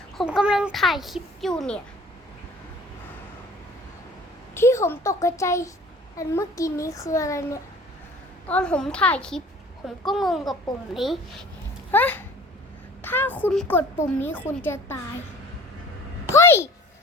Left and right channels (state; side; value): normal; both; correlation 0.48